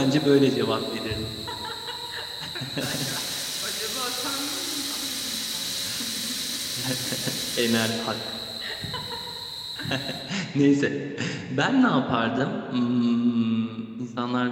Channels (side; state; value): both; identical; correlation 1.00